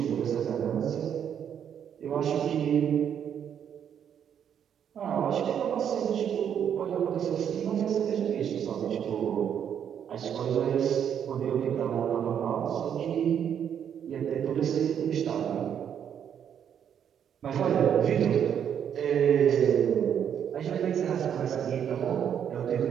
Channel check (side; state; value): left; quieter; 8.7 dB